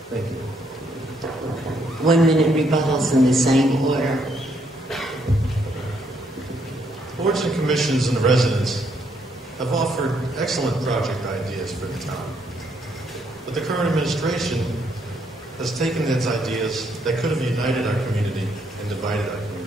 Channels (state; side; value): normal; both; correlation 0.72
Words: Thank you. 1 minute rebuttals in the same order. Boards and commissions and the residents have offered excellent project ideas for the town. But the current administration has taken its ideas that could have united our community and divided our